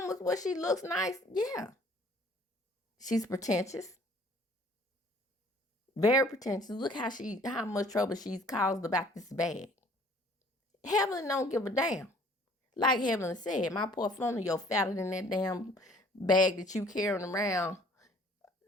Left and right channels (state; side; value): normal; both; correlation 0.56